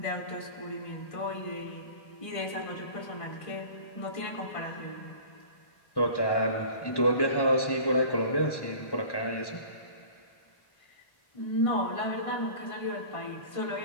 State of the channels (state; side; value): late; right; 1.1 ms